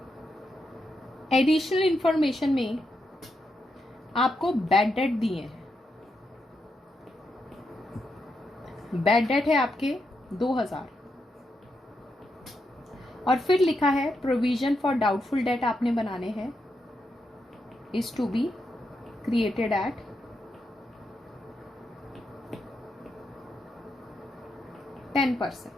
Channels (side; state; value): both; normal; correlation 0.83